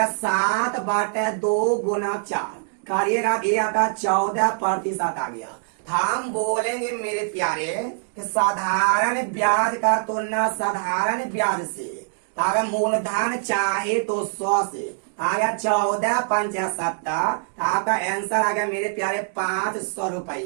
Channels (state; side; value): silent; left; digital silence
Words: गुना 4 करिएगा, ये आपका 14% आ गया। हम बोलेंगे मेरे प्यारे कि साधारण ब्याज का तुलना साधारण ब्याज से, अगर मूलधन चाहे तो 100 से, आ गया 14 5 70, आपका आंसर आ गया मेरे प्यारे 500